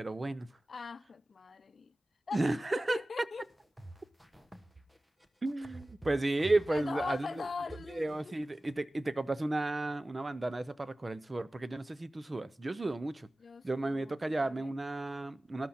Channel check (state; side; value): normal; both; correlation 0.97